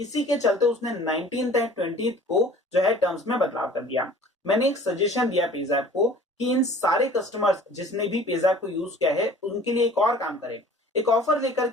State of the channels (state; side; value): normal; both; correlation 0.48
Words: के चलते उसने 19th एंड 20th को जो है टर्म्स में बदलाव कर दिया। मैंने एक सजेशन दिया पेज़ैप को कि इन सारे कस्टमर्स जिसने भी पेज़ैप को यूज किया है उनके लिए एक और काम करें, एक ऑफर लेकर